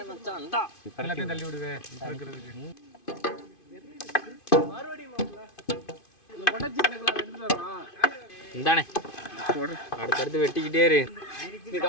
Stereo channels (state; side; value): late; right; 2.5 ms